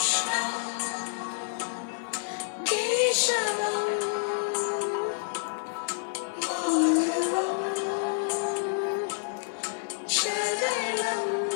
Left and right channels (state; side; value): silent; right; digital silence